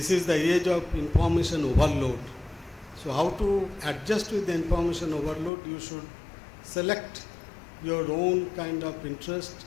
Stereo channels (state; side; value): drops out; right; at 5.5 s